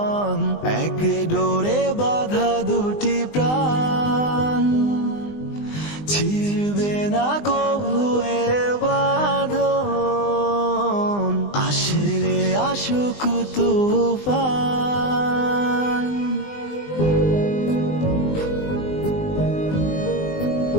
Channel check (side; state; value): right; late; 20 ms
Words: এক ডোরে বাঁধা দুটি প্রাণ, ছিড়বে না কভু এ বাঁধন, আসলে আসুক তুফান।